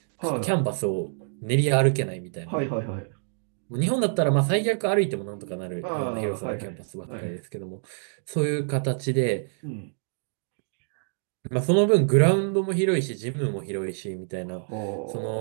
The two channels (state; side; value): silent; left; digital silence